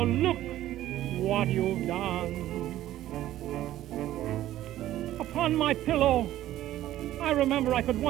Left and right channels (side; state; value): left; quieter; 13.8 dB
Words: look what you've done. Upon my pillow, I remember I could